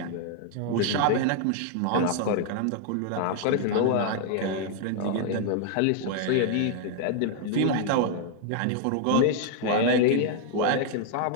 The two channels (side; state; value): both; different; correlation 0.00